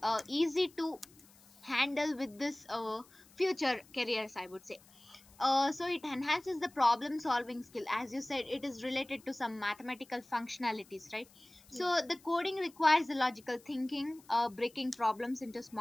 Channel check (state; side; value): noise; left; hiss, 26 dB below the sound